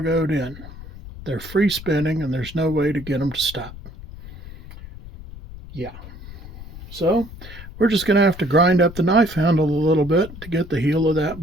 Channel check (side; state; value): left; noise; rumble, 15 dB below the sound